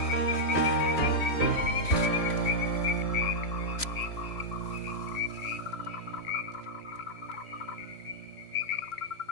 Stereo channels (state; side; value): late; right; 3.0 ms